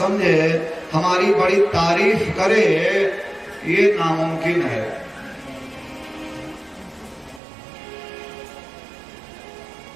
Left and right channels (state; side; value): drops out; left; at 7.4 s